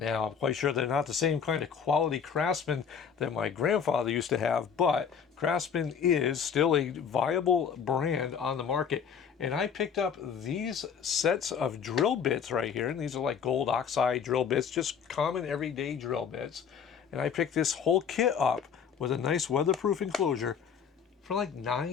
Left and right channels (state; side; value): quieter; right; 7.1 dB